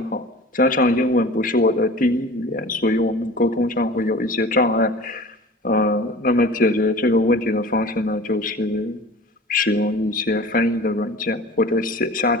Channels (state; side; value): normal; both; correlation 0.40